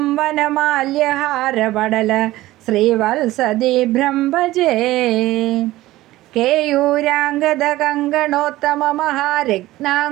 വനമാല്യഹാരപടല ശ്രീവത്സദീഭ്രം ഭജേ. കേയൂരാംഗദ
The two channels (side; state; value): left; quieter; 16.9 dB